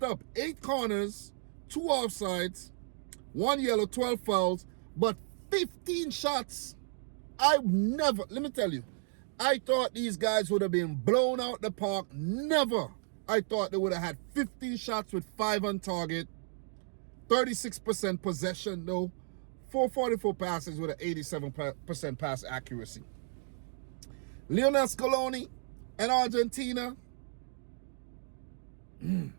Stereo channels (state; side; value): silent; left; 56 dB below the other